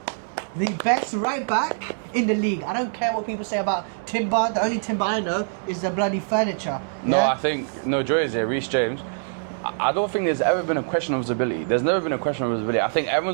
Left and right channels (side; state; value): left; silent; digital silence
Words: The best right back in the league. I don't care what people say about Timber. The only Timber I know is the bloody furniture. No, yeah? I think Joy is here. Reece James. I don't think there's ever been a question of his ability. There's never been a question of his ability. I think